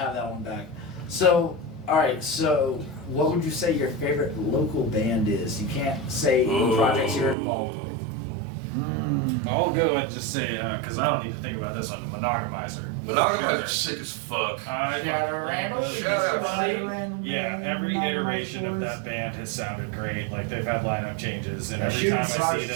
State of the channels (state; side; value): drops out; left; at 7.4 s